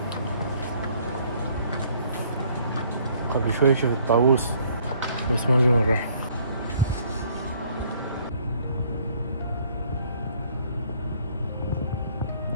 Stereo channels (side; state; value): both; inverted; correlation -0.61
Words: قبل شوي شفت الطاووس بس ما جا مرة.